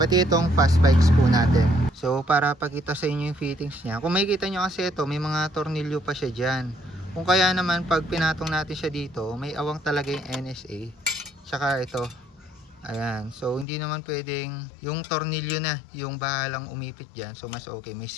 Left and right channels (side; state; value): right; drops out; at 13.7 s